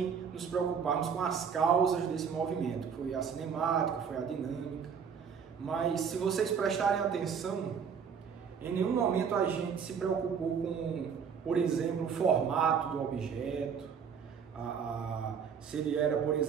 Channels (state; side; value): quieter; left; 6.8 dB